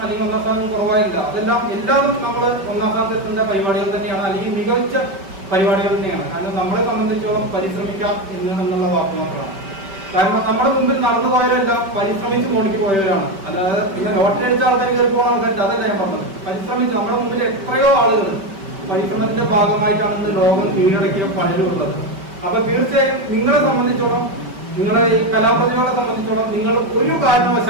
അല്ലെങ്കിൽ 1ാം സ്ഥാനം കുറവായില്ല. അതെല്ലാം എല്ലാവരും നമ്മൾ 1ാം സ്ഥാനത്ത് എത്തേണ്ട പരിപാടികൾ തന്നെയാണ്, അല്ലെങ്കിൽ മികച്ച പരിപാടികൾ തന്നെയാണ്. കാരണം നമ്മളെ സംബന്ധിച്ചോളം പരിശ്രമിക്കാം എന്നുള്ള വാക്ക് മാത്രമാണ്. കാരണം നമ്മുടെ മുമ്പിൽ നടന്നു പോയവരെല്ലാം പരിശ്രമിച്ച് മോണിക്ക് പോയവരാണ്. അല്ലാതെ പിന്നെ ലോട്ടറി അടിച്ച ആൾക്കാർ കയറി പോകുന്ന ആൾക്കാർ അതല്ല ഞാൻ പറഞ്ഞത്. പരിശ്രമിച്ച് നമ്മുടെ മുമ്പിൽ എത്രയോ ആളുകൾ പരിശ്രമത്തിന്റെ ഭാഗമായിട്ടാണ് ഇന്ന് ലോകം കീഴടക്കിയ പലരുള്ളത്. അപ്പൊ തീർച്ചയായും നിങ്ങളെ സംബന്ധിച്ചോളം, നിങ്ങളെ ഈ കലാപ്രതിഭകളെ സംബന്ധിച്ചോളം നിങ്ങൾ ഒരു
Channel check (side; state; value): left; late; 5.2 ms